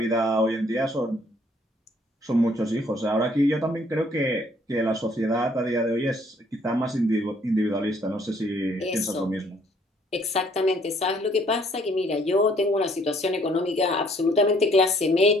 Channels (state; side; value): normal; both; correlation 0.63